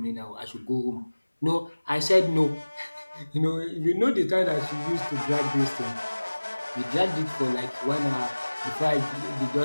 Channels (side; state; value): both; inverted; correlation -1.00